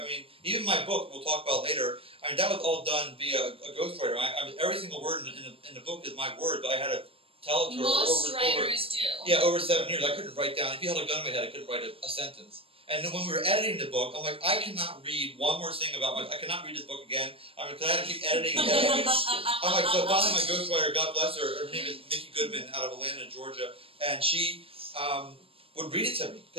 even my book we'll talk about later. I mean, that was all done via a ghostwriter. Every single word in the book is my word, but I had to tell it to Most writers do. Yeah, over 7 years. I couldn't write down. If you held a gun in my head, I couldn't write a sentence. And then when we were editing the book, I'm like, I cannot read one more thing about I cannot read this book again. Because I had to keep editing and editing. I'm like, so finally my ghostwriter, God bless her, her name is Mickey Goodman out of Atlanta, Georgia, and she would read it to me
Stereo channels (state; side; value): late; left; 0.27 ms